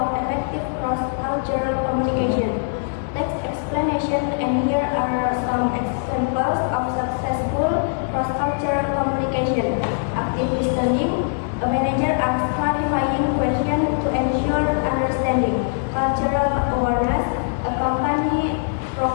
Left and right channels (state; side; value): silent; right; digital silence